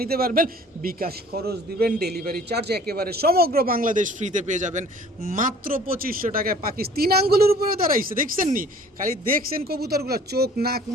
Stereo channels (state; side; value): normal; both; correlation 0.51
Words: নিতে পারবেন। বিকাশ খরচ দিবেন, ডেলিভারি চার্জ একেবারে সমগ্র বাংলাদেশ ফ্রিতে পেয়ে যাবেন মাত্র 2500 টাকায়। পাকিস্তান 3 আঙ্গুলের উপরে দাঁড়াইছে, দেখছেন নি, খালি দেখছেন কবুতরগুলো, চোখ নাক